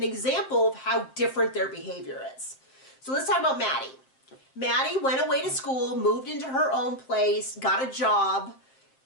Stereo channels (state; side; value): late; right; 7.5 ms